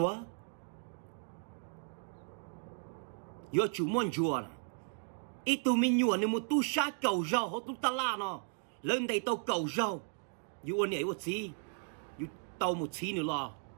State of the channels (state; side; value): silent; left; 54 dB below the other